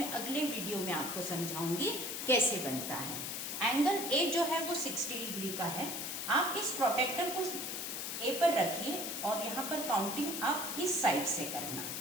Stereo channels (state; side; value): noise; left; hiss, 4 dB below the sound